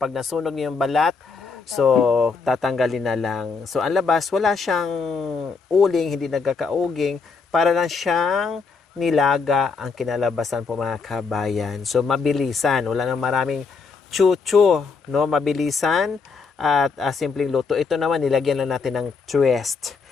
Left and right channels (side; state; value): right; quieter; 4.9 dB